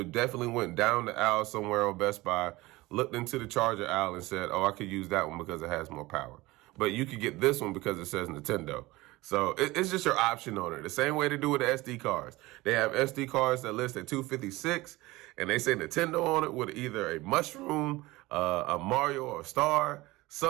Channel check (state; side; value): quieter; left; 20.2 dB